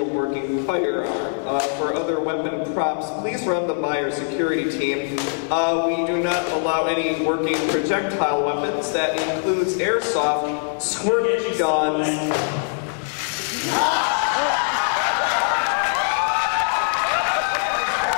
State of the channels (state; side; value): silent; right; 64 dB below the other